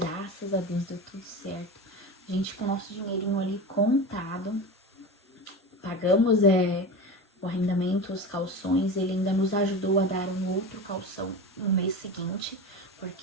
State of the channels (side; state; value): both; normal; correlation 0.27